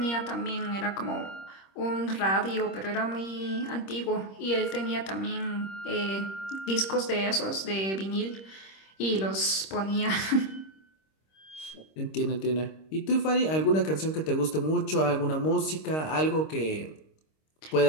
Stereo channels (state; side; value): late; right; 26 ms